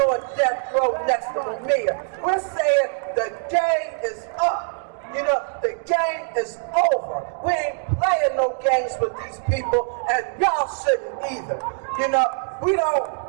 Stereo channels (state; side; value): silent; left; 63 dB below the other